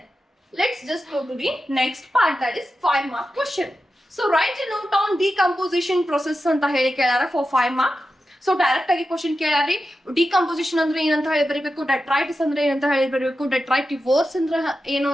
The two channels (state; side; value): normal; both; correlation 0.91